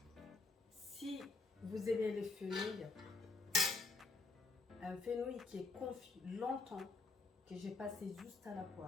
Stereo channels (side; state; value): right; quieter; 3.6 dB